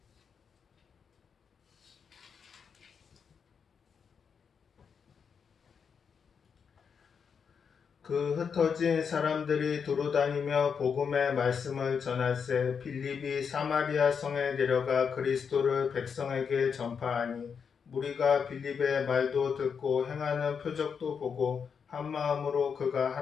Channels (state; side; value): quieter; right; 6.5 dB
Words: 그 흩어진 사람들이 두루다니며 복음의 말씀을 전할세 빌립이 사마리아 성에 내려가 그리스도를 백성에게 전파하니 무리가 빌립의 말도 듣고 행하는 표적도 보고 한 마음으로 그가